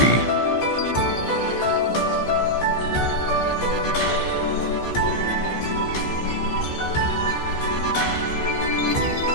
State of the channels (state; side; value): late; right; 14 ms